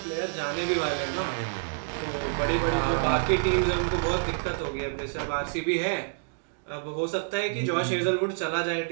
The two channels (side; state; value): left; silent; digital silence